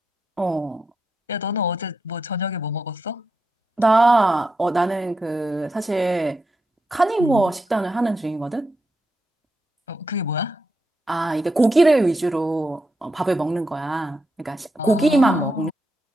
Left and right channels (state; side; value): normal; both; correlation 0.85